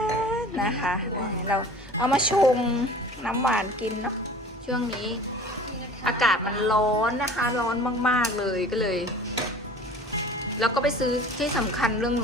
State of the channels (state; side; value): normal; both; correlation 0.43